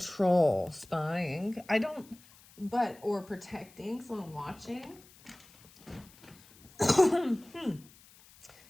spying. Or protecting, someone watching. Because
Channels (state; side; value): noise; left; hiss, 25 dB below the sound